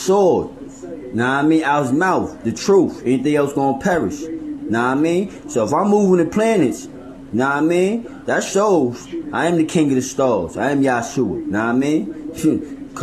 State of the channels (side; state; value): both; identical; correlation 1.00